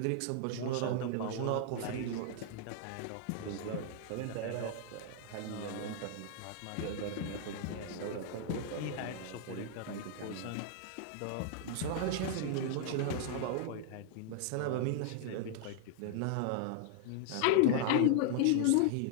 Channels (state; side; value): different; both; correlation -0.01